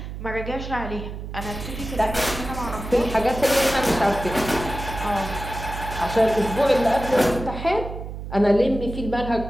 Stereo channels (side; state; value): right; noise; hum, 8 dB below the sound